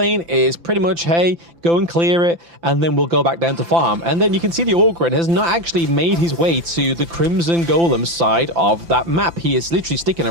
is pretty much, hey, go and clear it, and then we'll go back down to farm. And then you can see the Orgren has not actually made his way to the Crimson Golem side of that map. He is literally sticking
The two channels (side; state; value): left; late; 5.9 ms